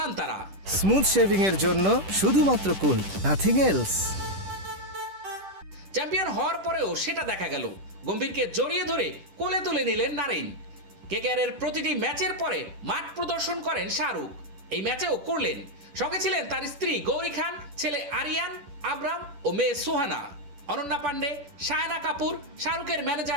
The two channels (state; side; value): late; left; 10 ms